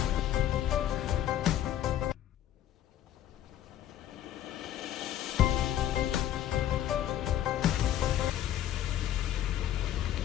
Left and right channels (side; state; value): right; quieter; 11.7 dB